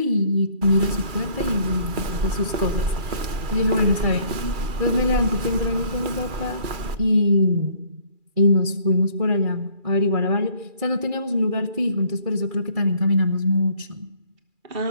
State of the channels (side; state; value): left; late; 2.4 ms